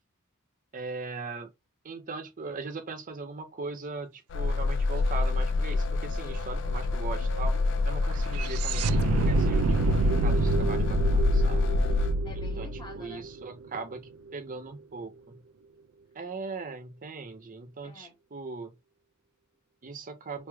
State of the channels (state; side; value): normal; both; correlation 0.69